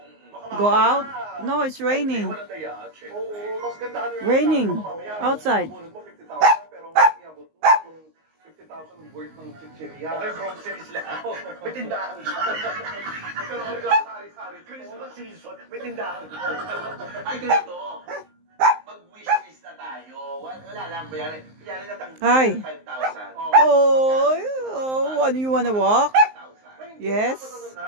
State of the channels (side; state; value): left; late; 19 ms